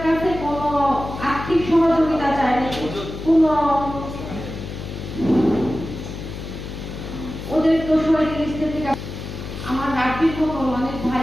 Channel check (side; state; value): left; noise; hum, 9 dB below the sound